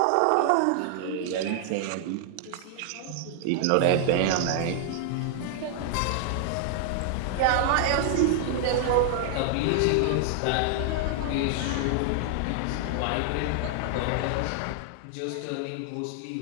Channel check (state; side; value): different; both; correlation 0.00